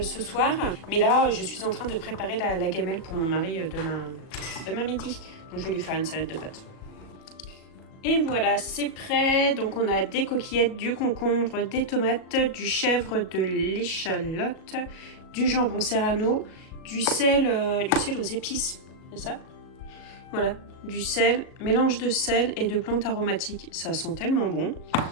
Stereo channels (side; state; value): right; late; 37 ms